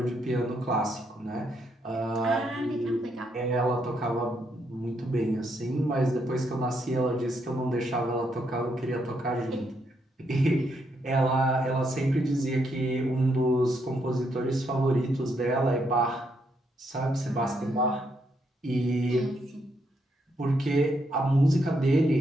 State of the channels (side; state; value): both; normal; correlation 0.77